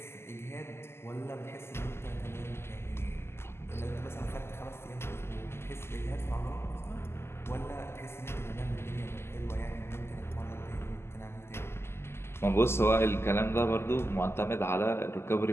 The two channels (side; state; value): right; late; 0.12 ms